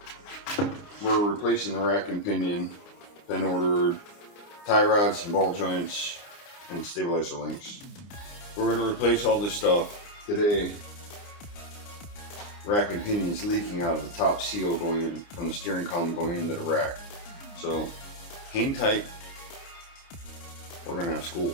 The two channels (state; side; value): late; right; 29 ms